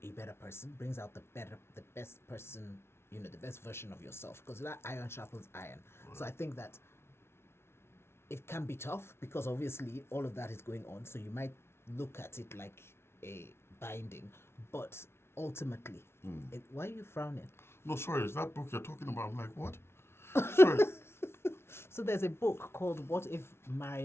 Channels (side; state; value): right; late; 0.12 ms